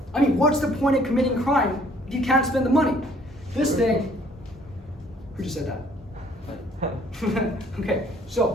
I mean, what's the point of committing crime if you can't spend the money? This thing. Who just said that? Okay,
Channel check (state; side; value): normal; both; correlation 0.60